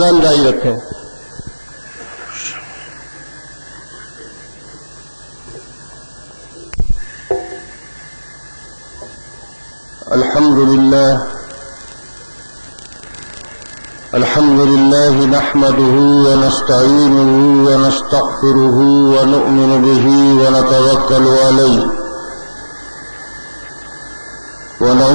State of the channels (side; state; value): both; inverted; correlation -1.00